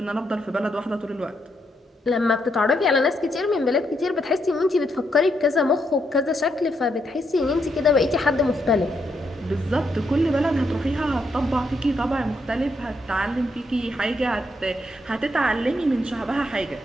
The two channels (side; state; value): both; normal; correlation 0.78